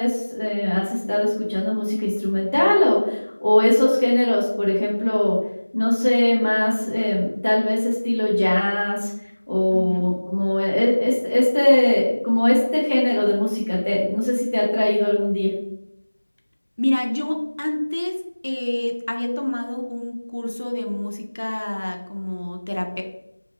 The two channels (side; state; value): both; inverted; correlation -1.00